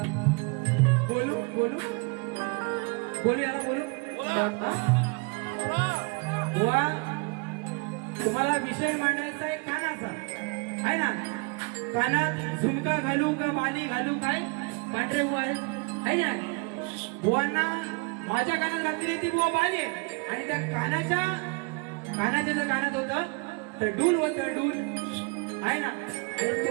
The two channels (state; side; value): quieter; left; 30.8 dB